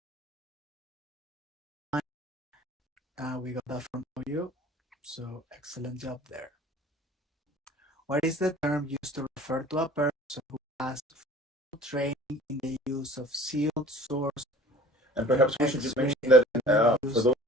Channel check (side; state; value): both; normal; correlation 0.46